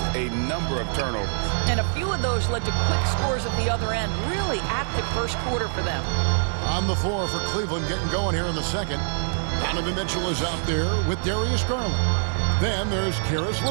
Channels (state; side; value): silent; left; digital silence